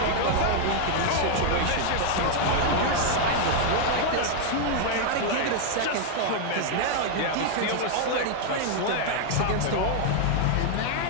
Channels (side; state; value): both; different; correlation 0.00